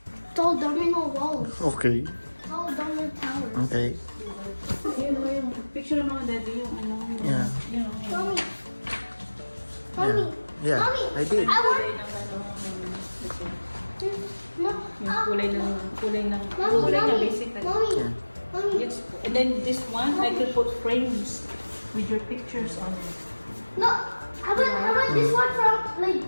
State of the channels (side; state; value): both; inverted; correlation -1.00